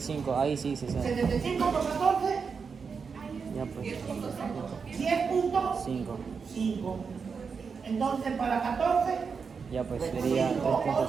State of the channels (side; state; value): left; quieter; 5.6 dB